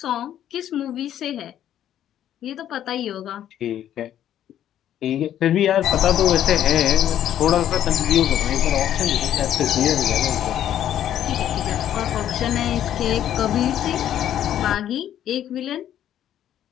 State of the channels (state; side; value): quieter; right; 11.0 dB